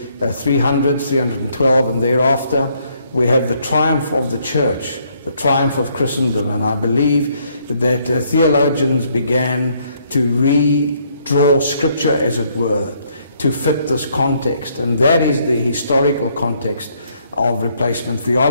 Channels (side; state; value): both; inverted; correlation -0.69